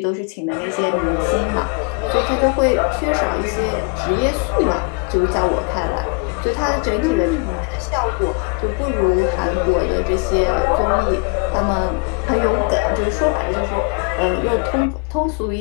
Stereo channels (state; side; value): quieter; right; 35.8 dB